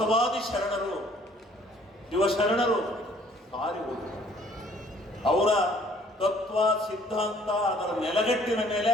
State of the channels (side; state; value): both; normal; correlation 0.58